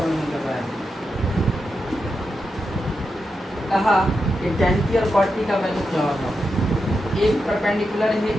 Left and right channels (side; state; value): both; normal; correlation 0.87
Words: कर रहा है। कहा कि tan P और cot P का वैल्यू क्या होगा। एक परपेंडिकुलर है,